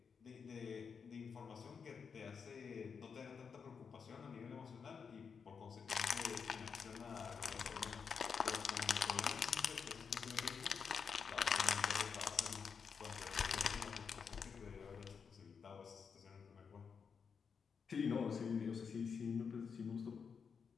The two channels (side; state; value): right; quieter; 6.1 dB